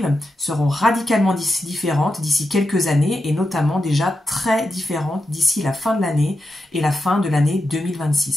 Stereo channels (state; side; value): normal; both; correlation 0.88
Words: seront radicalement différentes d'ici quelques années et notamment déjà très différentes d'ici la fin de l'année et la fin de l'année